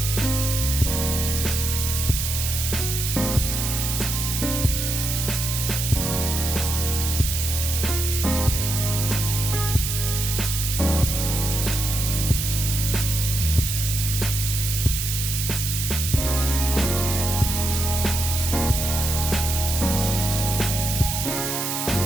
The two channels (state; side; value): noise; right; hiss, 2 dB below the sound